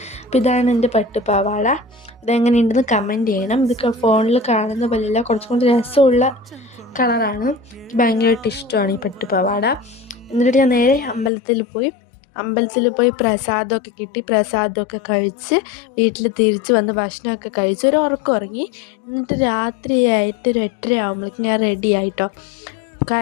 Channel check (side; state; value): right; drops out; at 11.3 s